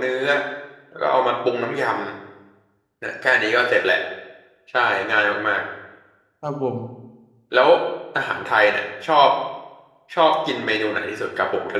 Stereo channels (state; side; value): identical; both; correlation 1.00